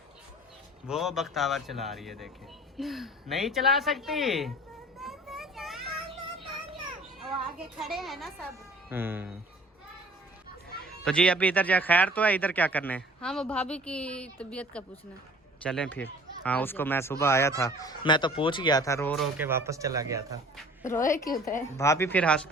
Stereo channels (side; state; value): both; normal; correlation 0.49